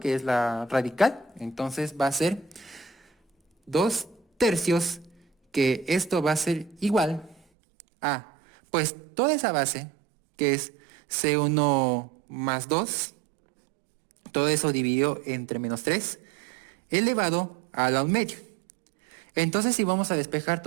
es la radical, entonces va a ser 2 tercios, que esto va a ser igual a, pues toda esa base, que es C1 más 2, todo eso dividido entre menos 3, elevado a la 1 medio. Entonces si vamos a despejar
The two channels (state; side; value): drops out; left; at 7.4 s